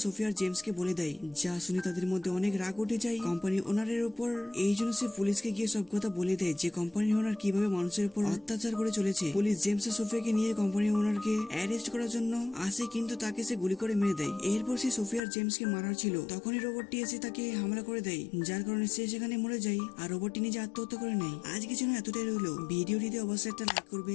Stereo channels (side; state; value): right; drops out; at 15.2 s